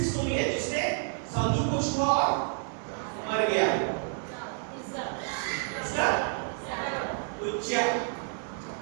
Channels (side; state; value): left; silent; 58 dB below the other